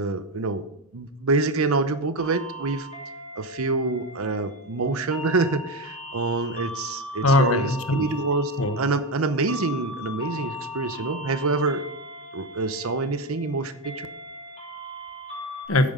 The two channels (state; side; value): normal; both; correlation 0.15